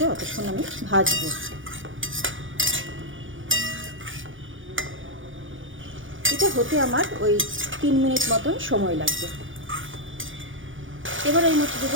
ততক্ষণ আমি ভাজবো। এটা হতে আমার ওই 3 মিনিট মতন সময় লাগবে। এবার এই মধ্যে দেবো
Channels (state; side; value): late; left; 0.57 ms